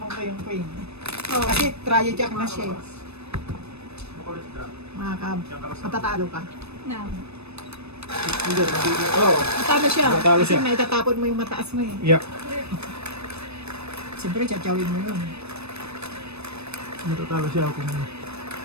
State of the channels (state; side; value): late; left; 0.79 ms